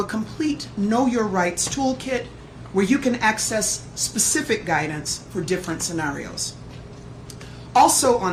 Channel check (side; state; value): both; identical; correlation 1.00